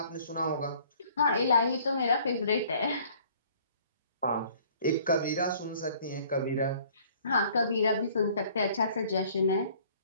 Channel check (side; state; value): both; inverted; correlation -0.56